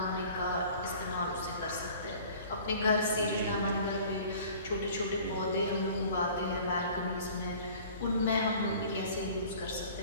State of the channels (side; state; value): both; inverted; correlation -0.47